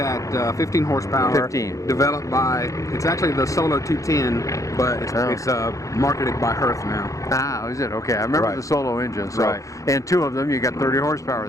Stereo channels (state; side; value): late; right; 0.16 ms